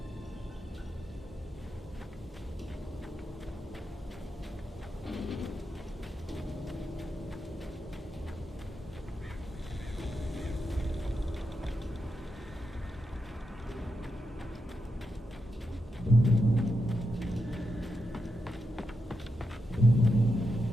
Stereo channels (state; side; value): normal; both; correlation 0.86